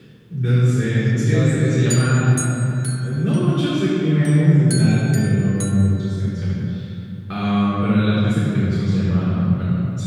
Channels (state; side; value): identical; both; correlation 1.00